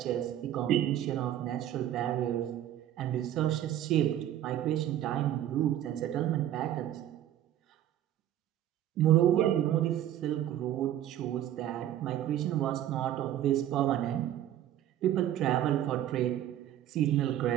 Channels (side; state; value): left; quieter; 11.9 dB